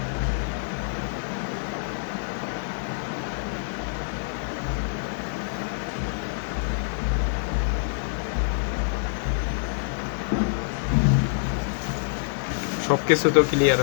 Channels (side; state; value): right; silent; digital silence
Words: সব কিছু তো ক্লিয়ার